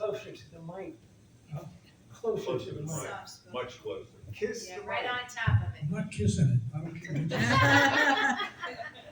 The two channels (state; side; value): identical; both; correlation 1.00